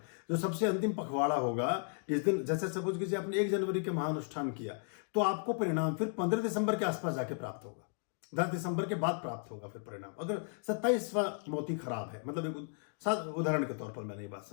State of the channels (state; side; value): silent; right; 54 dB below the other